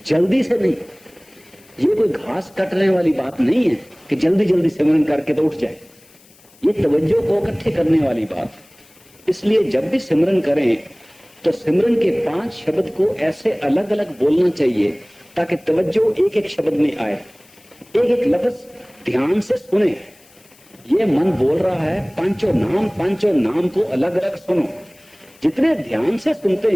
जल्दी से नहीं, ये कोई घास कटने वाली बात नहीं है कि जल्दी जल्दी सिमरन करके तो उठ जाए, ये तवज्जो को इकट्ठे करने वाली बात। इसलिए जब भी सिमरन करें तो सिमरन के 5 शब्द को ऐसे अलग अलग बोलना चाहिए ताकि तवज्जो एक एक शब्द में आए, एक एक लफ्ज ध्यान से सुने। ये मन बोल रहा है पांचों नाम को अलग अलग सुनो। जितने ध्यान से सुनते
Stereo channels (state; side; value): noise; left; hiss, 28 dB below the sound